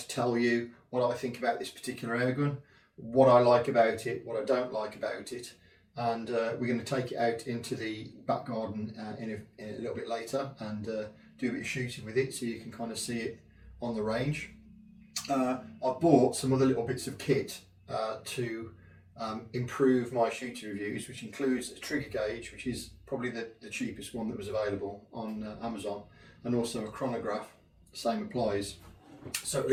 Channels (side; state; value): both; identical; correlation 1.00